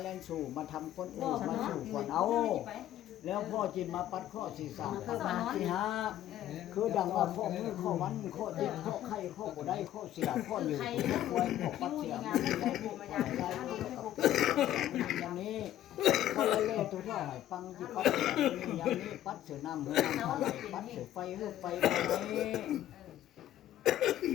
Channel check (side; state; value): right; quieter; 12.5 dB